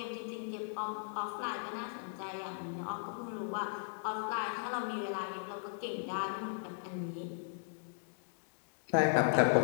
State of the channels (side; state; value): right; silent; 53 dB below the other